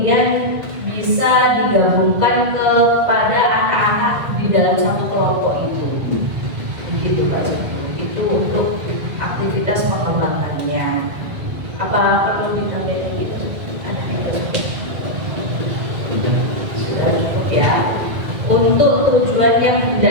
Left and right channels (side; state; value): left; late; 2.0 ms